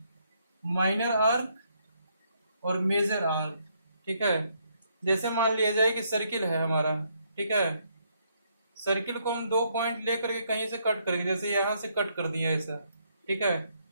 माइनर आर्क और मेजर आर्क, ठीक है। जैसे मान लिया जाए कि सर्किल है हमारा, ठीक है। सर्किल को हम दो पॉइंट लेकर के कहीं से कट करेंगे, जैसे यहां से कट कर दिया ऐसा, ठीक है।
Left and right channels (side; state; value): both; inverted; correlation -0.73